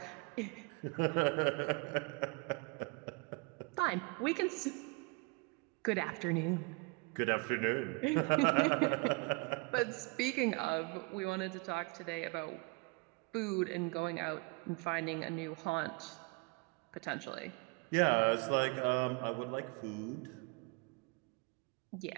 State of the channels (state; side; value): quieter; left; 29.4 dB